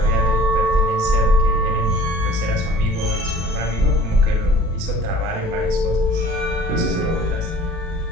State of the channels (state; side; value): late; left; 36 ms